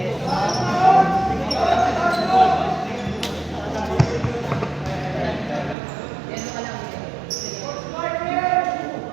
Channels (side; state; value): left; drops out; at 5.8 s